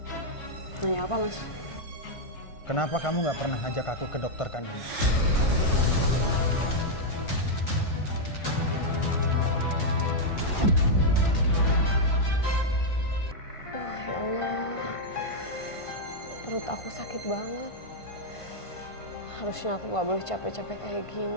Nanya apa mas? Kenapa kamu nggak pernah ngajak aku ke dokter kandungan? Ya Allah, perut aku sakit banget. Harusnya aku gak boleh capek-capek kayak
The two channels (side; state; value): right; late; 1.5 ms